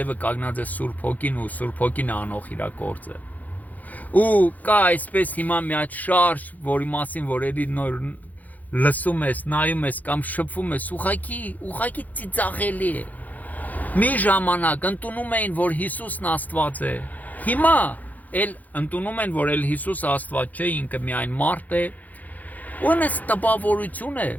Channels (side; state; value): right; late; 0.080 ms